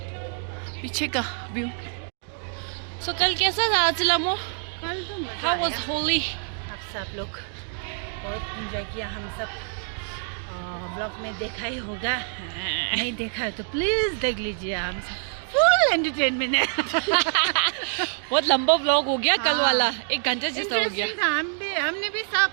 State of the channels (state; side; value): silent; left; 61 dB below the other